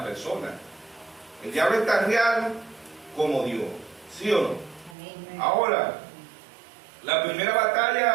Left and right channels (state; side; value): drops out; left; at 5.0 s